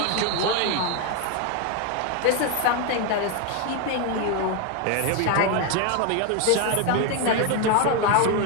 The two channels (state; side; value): different; both; correlation 0.01